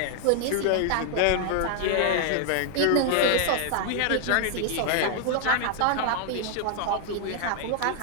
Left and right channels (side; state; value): both; different; correlation 0.00